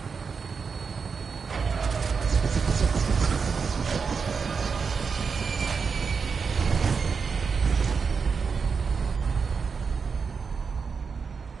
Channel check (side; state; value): left; quieter; 5.5 dB